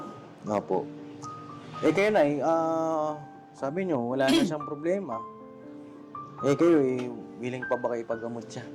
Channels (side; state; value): both; identical; correlation 1.00